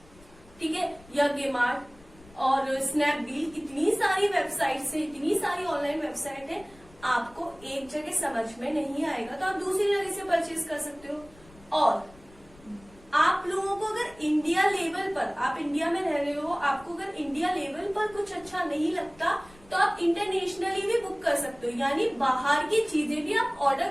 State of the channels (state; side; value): noise; left; rumble, 25 dB below the sound